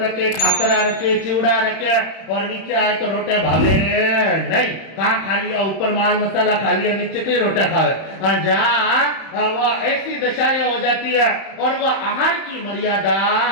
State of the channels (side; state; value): right; late; 31 ms